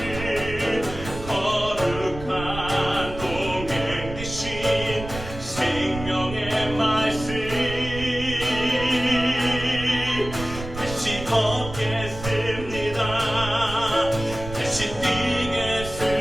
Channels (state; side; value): noise; right; rumble, 10 dB below the sound